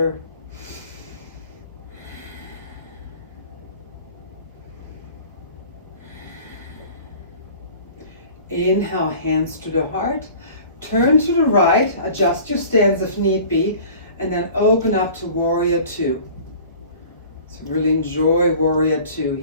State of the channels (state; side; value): inverted; both; correlation -0.45